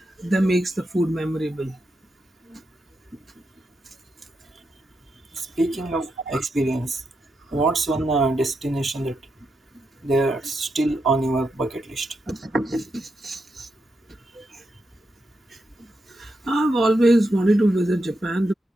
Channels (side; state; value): both; normal; correlation 0.84